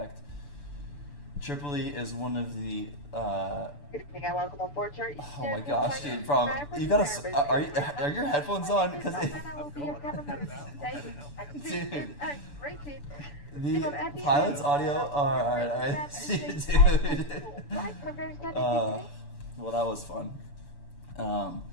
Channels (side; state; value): right; late; 6.9 ms